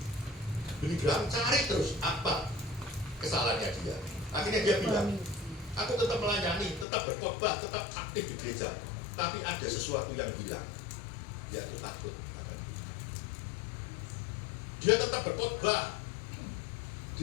Billy Graham cari terus apa kesalahannya dia. Akhirnya dia bilang, aku tetap melayani, tetap berkhotbah, tetap aktif di gereja. Tapi ada sesuatu yang hilang, yaitu takut. Dia tetap berkhotbah,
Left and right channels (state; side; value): drops out; right; at 6.9 s